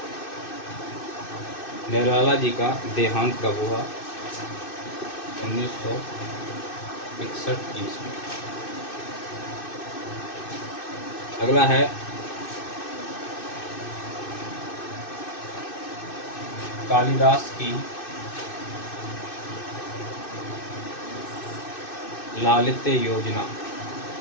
निराला जी का देहांत कब हुआ? 1961 ईस्वी। अगला है, कालिदास की लालित्य योजना।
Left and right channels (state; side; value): late; right; 2.6 ms